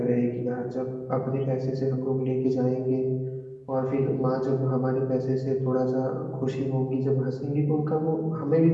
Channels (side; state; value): both; identical; correlation 1.00